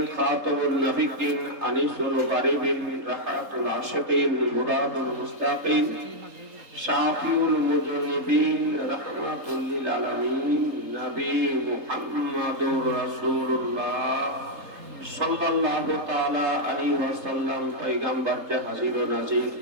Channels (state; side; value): late; left; 3.8 ms